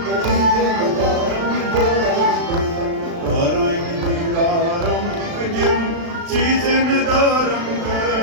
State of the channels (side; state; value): left; late; 36 ms